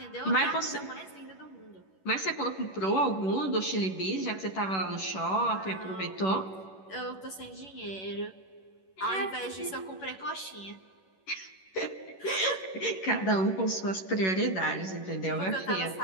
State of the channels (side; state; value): right; late; 11 ms